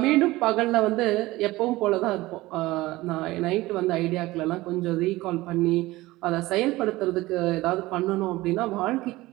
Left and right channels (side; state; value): left; quieter; 18.9 dB